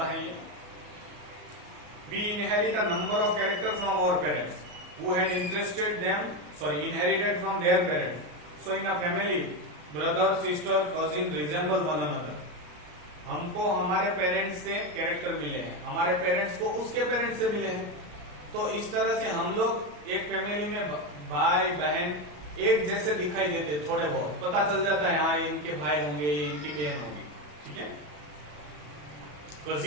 है ये। We inherit a number of characters from our parents who had inherited from their parents. So in a family, brother, sister, cousin resemble one another. हमको हमारे parents से कैरेक्टर मिले हैं, हमारे पेरेंट्स को उसके पेरेंट्स से मिले हैं। तो इस तरह से हम लोग एक फैमिली में भाई बहन एक जैसे दिखाई देते, थोड़े बहुत पता चल जाता है, हाँ इनके भाई होंगे, इनकी बहन होगी, ठीक है।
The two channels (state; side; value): late; left; 34 ms